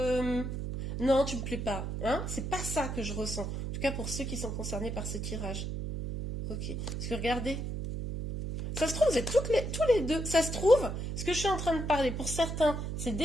non, tu me plais pas. Hein, c'est pas ça que je ressens. En tout cas pour ceux qui sont concernés par ce tirage. Ok. Parce que regardez, ça se trouve, vous êtes tous les deux. Ça se trouve, ce que je suis en train de parler, pour certains, c'est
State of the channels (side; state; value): right; noise; hum, 4 dB below the sound